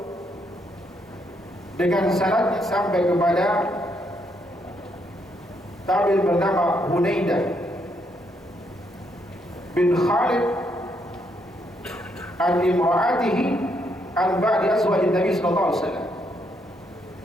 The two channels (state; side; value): normal; both; correlation 0.75